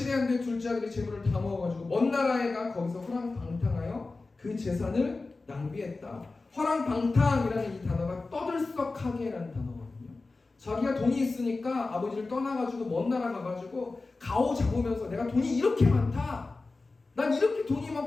안 돼 둘째 아들이 재물을 다 모아가지고 먼 나라에 가 거기서 허랑방탕하여 그 재산을 낭비했다. 허랑방탕이라는 이 단어가 떠들썩하게라는 단어거든요. 자기가 돈이 있으니까 아버지를 떠나가지고 먼 나라 가가지고 가오 잡으면서 내가 돈이 이렇게 많다, 난 이렇게 돈이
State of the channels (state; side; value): quieter; right; 3.6 dB